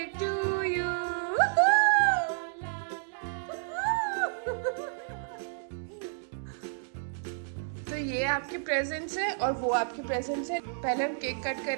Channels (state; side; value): silent; left; digital silence